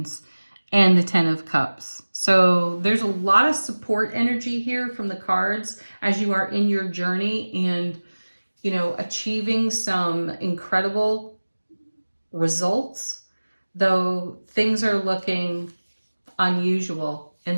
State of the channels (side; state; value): both; inverted; correlation -1.00